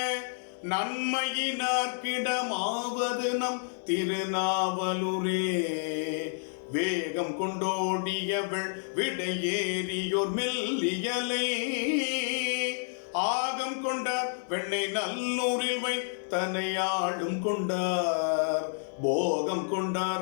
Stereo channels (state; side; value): silent; right; digital silence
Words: நன்மையினார்க்கிடமாவது நம் திருநாவலூரே, வேகம் கொண்டோடியவள் விடையேறியோர் மெல்லியலை, ஆகம் கொண்டார் வெண்ணை நல்லூரில் வைத்தனையாளும் கொண்டார், போகம்